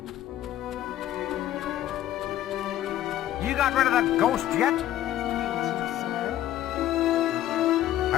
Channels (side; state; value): right; quieter; 12.9 dB